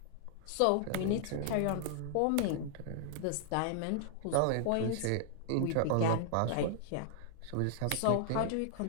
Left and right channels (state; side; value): different; both; correlation -0.01